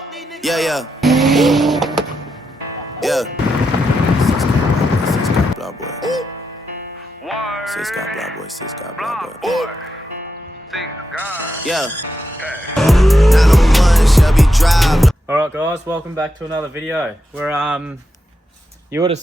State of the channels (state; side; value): normal; both; correlation 0.85